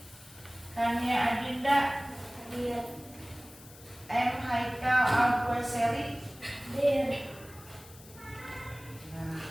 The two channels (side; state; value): left; noise; hiss, 21 dB below the sound